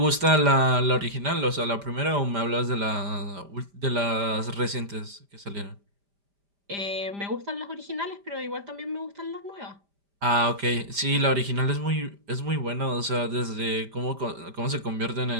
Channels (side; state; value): left; late; 5.0 ms